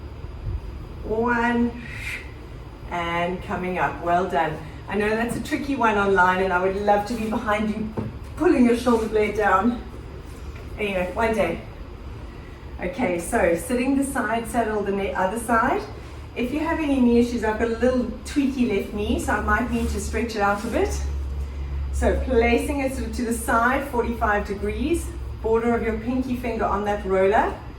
1, and coming up. Well done. I know that's a tricky one online, and I would love to be behind you pulling your shoulder blade down. Anyway, one day. Okay, so sitting the side saddle the other side. If you have any knee issues, I've got a little tweaky left knee, so I might need to stretch it out a bit. So placing it sort of to the side, 45 degrees, border of your pinky finger on that roller.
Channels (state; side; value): identical; both; correlation 1.00